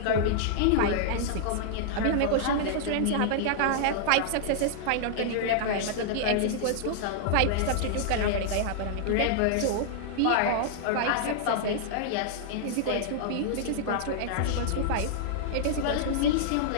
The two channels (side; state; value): both; different; correlation -0.01